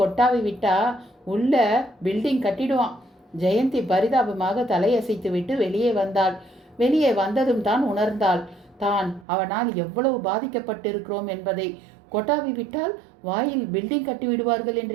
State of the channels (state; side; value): drops out; left; at 9.2 s